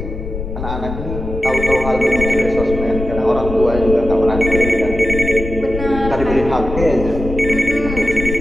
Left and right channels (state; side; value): noise; left; rumble, 7 dB below the sound